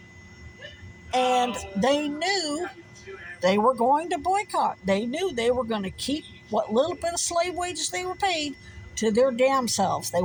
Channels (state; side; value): identical; both; correlation 1.00